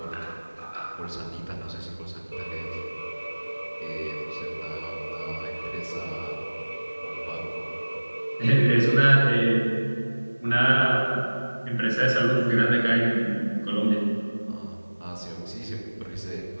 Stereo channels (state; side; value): inverted; both; correlation -1.00